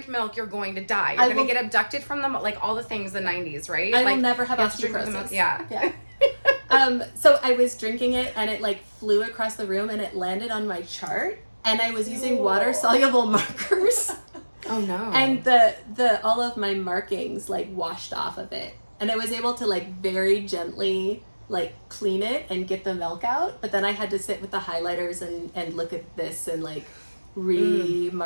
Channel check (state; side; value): inverted; both; correlation -1.00